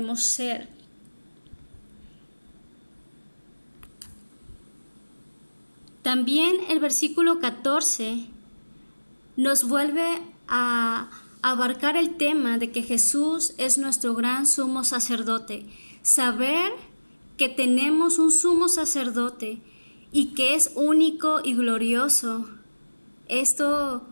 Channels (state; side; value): inverted; both; correlation -1.00